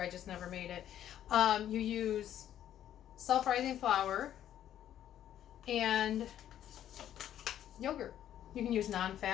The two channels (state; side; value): quieter; right; 11.1 dB